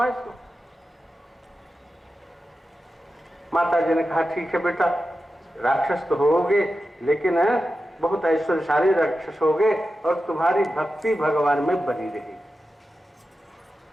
इसको। माता जी ने कहा ठीक है बेटा, राक्षस तो होगे लेकिन बहुत ऐश्वर्यशाली राक्षस होगे और तुम्हारी भक्ति भगवान में बनी रहेगी।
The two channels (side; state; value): both; normal; correlation 0.91